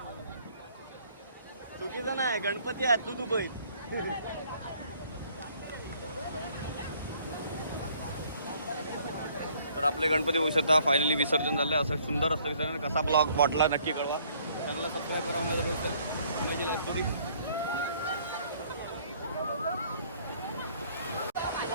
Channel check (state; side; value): inverted; both; correlation -0.61